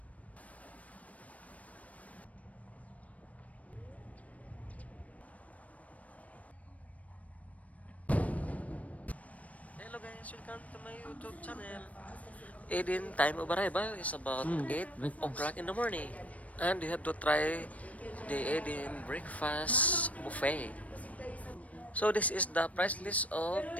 Hello guys, welcome to my YouTube channel. Aiden time of arrival is about 8 o'clock in the morning. And we have to try the Aiden breakfast buffet. So this is the price list of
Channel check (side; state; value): right; late; 0.068 ms